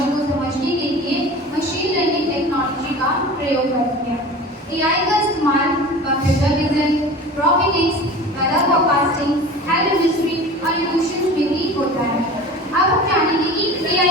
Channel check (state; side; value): normal; both; correlation 0.37